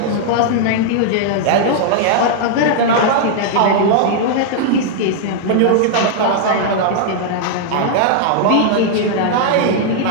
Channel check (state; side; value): different; both; correlation -0.01